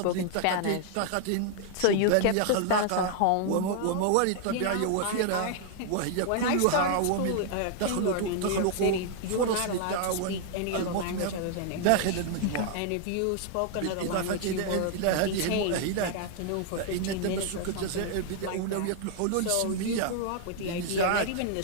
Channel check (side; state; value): both; different; correlation 0.00